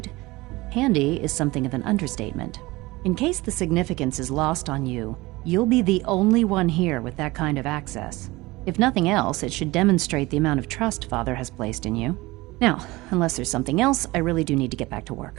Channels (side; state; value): left; quieter; 20.9 dB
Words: handy is something of an understatement. In case the significance is lost on you, you'll be the only one here with that kind of access. If nothing else, it should demonstrate the amount of trust Father has placed in you. Now, unless there's something else, I really do need to get back to